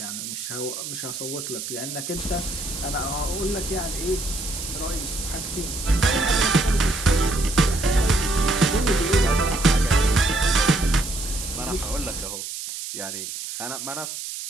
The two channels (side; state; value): right; noise; hiss, 7 dB below the sound